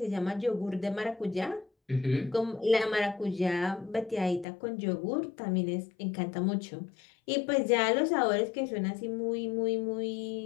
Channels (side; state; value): right; drops out; at 4.5 s